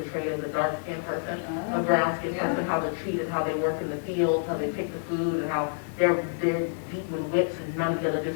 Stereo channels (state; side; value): silent; right; digital silence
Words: as a dark-skinned person, a brown-skinned person, how they're treated, how they work in the fields, how they pick the food, and how they're beat with whips, and none of the other